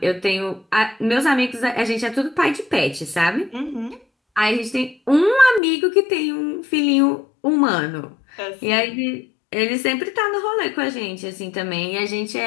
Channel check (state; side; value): drops out; right; at 5.6 s